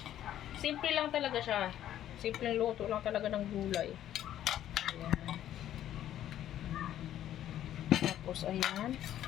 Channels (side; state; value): right; quieter; 11.7 dB